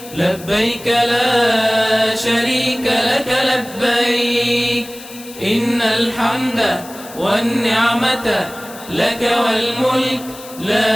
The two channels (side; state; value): left; noise; hiss, 17 dB below the sound